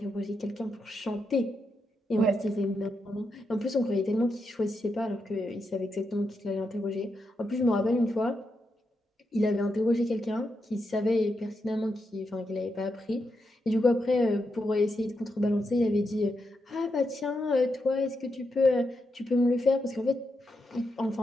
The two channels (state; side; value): normal; both; correlation 0.84